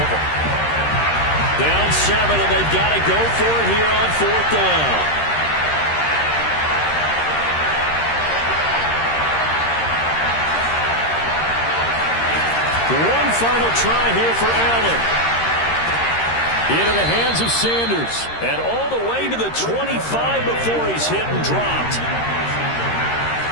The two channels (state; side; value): late; right; 13 ms